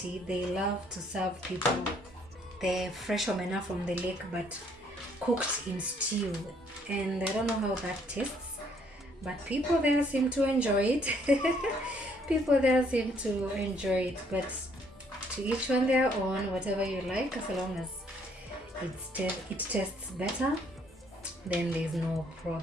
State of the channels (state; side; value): normal; both; correlation 0.66